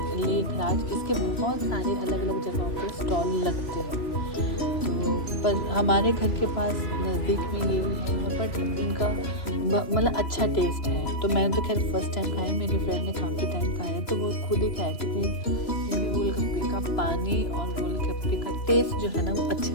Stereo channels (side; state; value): right; late; 3.0 ms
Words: लेखराज, इसके बहुत सारे अलग अलग जगहों पे स्टॉल लगते हैं। तो पर हमारे घर के पास नज़दीक में ये है, और बट इनका मतलब अच्छा टेस्ट है। तो मैंने तो खैर फर्स्ट टाइम खाया, मेरी फ्रेंड ने काफ़ी टाइम खाया, तो वो खुद ही कहा थी कि इनके गोलगप्पे का पानी और गोलगप्पे का टेस्ट जो है ना वो अच्छा